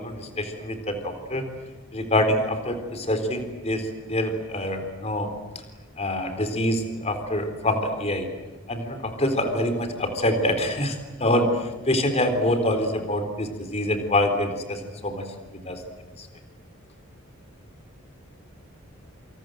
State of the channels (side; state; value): both; normal; correlation 0.26